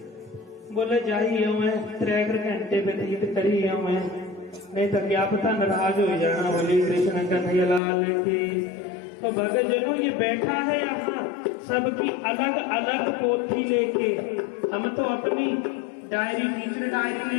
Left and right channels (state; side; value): drops out; right; at 7.8 s